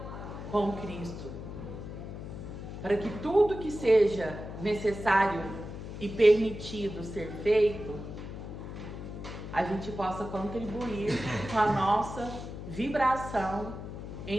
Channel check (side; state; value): left; noise; hum, 9 dB below the sound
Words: com Cristo, para que tudo que seja necessário e permitido ser feito, a gente possa contribuir com a nossa vibração